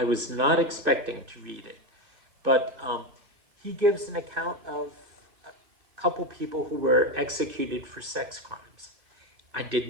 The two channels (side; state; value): left; late; 2.6 ms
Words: was not expecting to read it, but he gives an account of a couple people who were executed for sex crimes. I